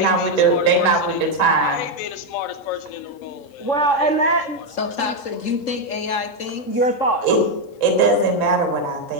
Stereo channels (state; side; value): late; right; 3.7 ms